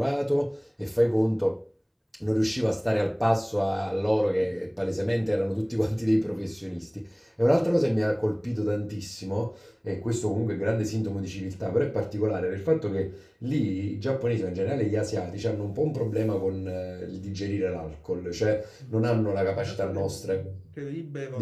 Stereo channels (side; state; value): both; identical; correlation 1.00